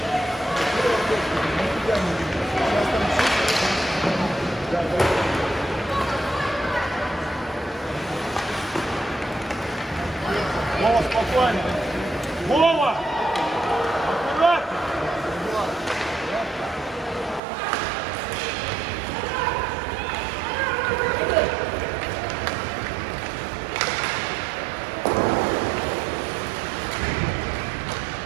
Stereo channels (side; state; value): left; drops out; at 17.4 s